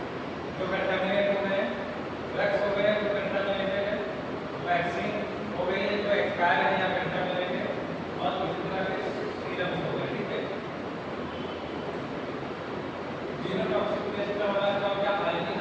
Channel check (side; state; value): both; identical; correlation 1.00